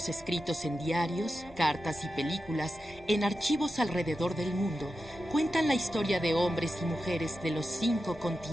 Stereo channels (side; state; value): both; normal; correlation 0.91